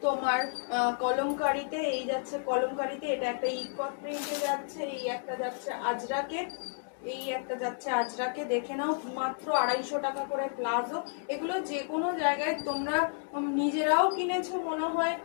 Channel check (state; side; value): silent; right; 57 dB below the other